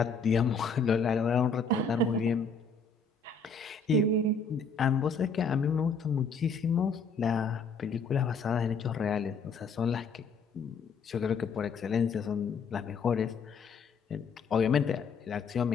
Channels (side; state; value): right; quieter; 4.6 dB